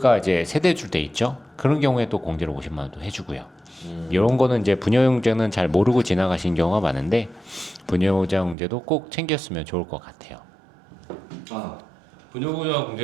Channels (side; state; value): left; drops out; at 8.6 s